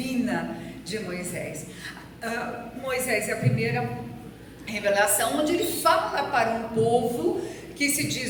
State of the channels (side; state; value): both; identical; correlation 1.00